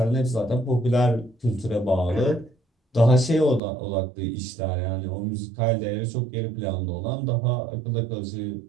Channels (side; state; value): left; drops out; at 3.6 s